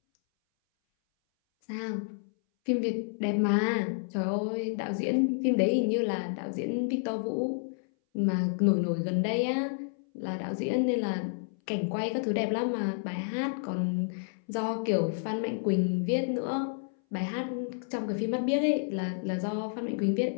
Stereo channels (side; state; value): right; silent; 58 dB below the other